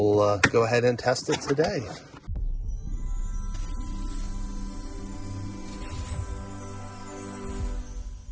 go ahead and test it today.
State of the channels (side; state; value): both; identical; correlation 1.00